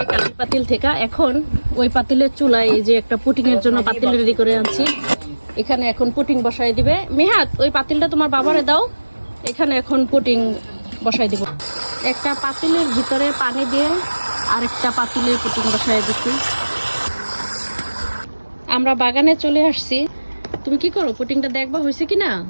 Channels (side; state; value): both; inverted; correlation -1.00